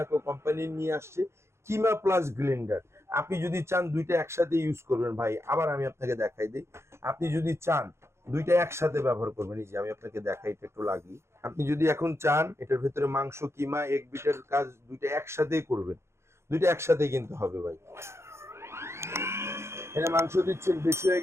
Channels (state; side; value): late; left; 0.13 ms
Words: কোম্পানি নিয়ে আসছে কিমা প্লাস গ্লেন্ডার। আপনি যদি চান দুইটা একসাথে ইউজ করবেন ভাই, আবার আমি আপনাকে দেখাই দিই। আপনি যদি চান দুইটা একসাথে ব্যবহার করবেন। এই যে আমি আপনাকে দেখাই, এটা একটু লাগিয়ে, আপনি যদি এখন চান এটার ভেতরে মাংস কিমা এক বিটের কাজ দুইটা একসাথেই করবেন, দুইটা একসাথেই কিন্তু হবে ভাই। এটা মাংস দিচ্ছেন বেশি হয়ে